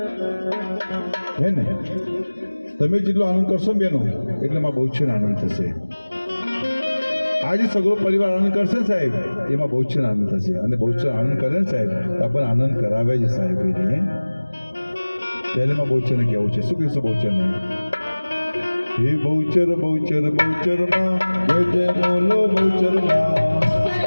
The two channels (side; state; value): both; inverted; correlation -1.00